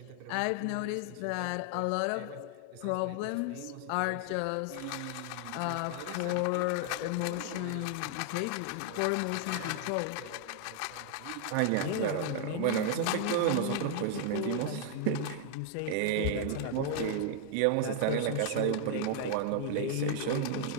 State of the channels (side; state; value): both; different; correlation 0.00